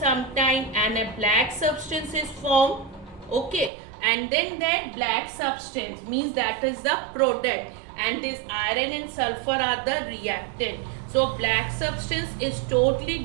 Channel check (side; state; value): left; drops out; at 3.7 s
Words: time and a black substance is formed. Okay, and then that black substance means that is the product, and this iron and sulfur are the reactant. So black substance is totally